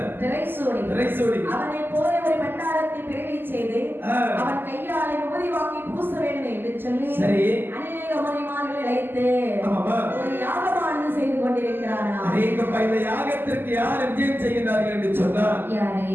திரைசூடி அவனை போல ஒரு பண்டாரத்தை பிறவி செய்து அவன் கையாலை உபதி வாங்கி பூச வேண்டும் என்று சொல்லி அநேக மணிமார்களை அழைத்து ஒரு யாகமானது செய்து கொண்டிருக்கிறானா. இந்த யாகத்திற்கு யார் விஜயம் செய்கிறார்கள் என்று சொன்னார்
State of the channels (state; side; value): late; left; 0.096 ms